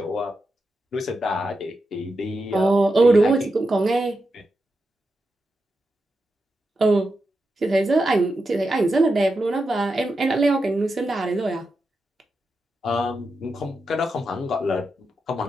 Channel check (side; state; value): both; normal; correlation 0.88